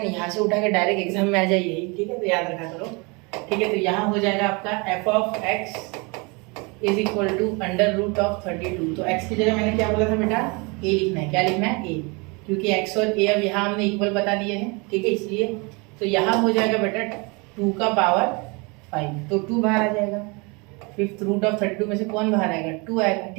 यहाँ से उठा के डायरेक्ट एग्जाम में आ जाए यही, ठीक है, तो याद रखा करो, ठीक है। तो यहाँ हो जाएगा आपका f of x is equal to under root of 32। तो x की जगह मैंने क्या बोला था बेटा, a लिखना है। क्या लिखना है, a, क्योंकि x और a अब यहाँ हमने इक्वल बता दिए हैं, ठीक है, इसलिए तो यहाँ हो जाएगा बेटा 2 का पावर 5, तो 2 बाहर आ जाएगा। फिफ्थ रूट ऑफ 32 में से कौन बाहर आएगा, 2 आएगा,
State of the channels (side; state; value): left; quieter; 29.3 dB